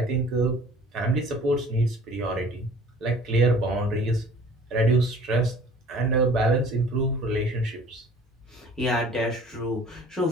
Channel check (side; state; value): both; normal; correlation 0.49